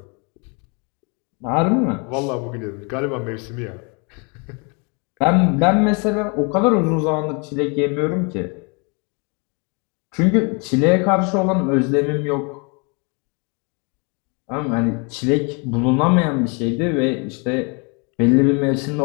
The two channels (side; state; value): right; quieter; 33.1 dB